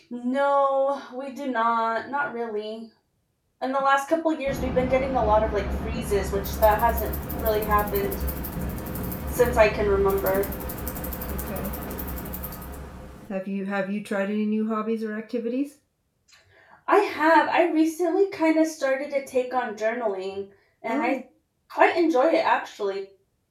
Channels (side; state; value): both; identical; correlation 1.00